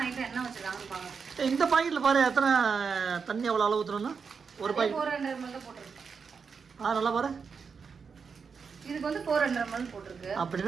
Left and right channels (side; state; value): left; quieter; 5.7 dB